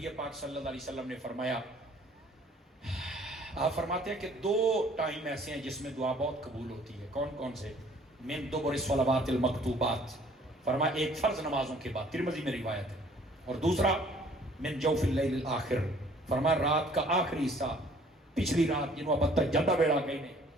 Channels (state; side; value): normal; both; correlation 0.56